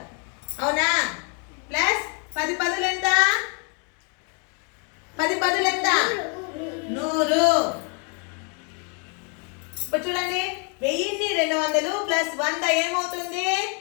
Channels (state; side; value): quieter; right; 37.9 dB